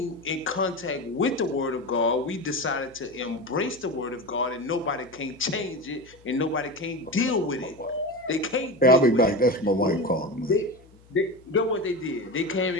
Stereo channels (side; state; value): left; noise; hum, 27 dB below the sound